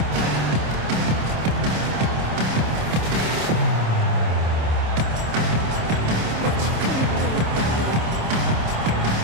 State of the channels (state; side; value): late; left; 26 ms